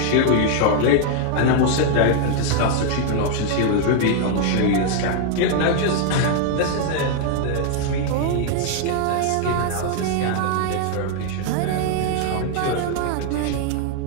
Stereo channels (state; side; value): different; both; correlation 0.00